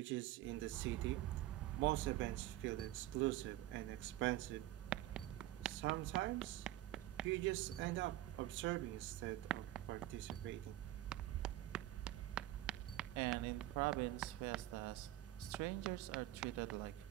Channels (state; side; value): quieter; left; 15.2 dB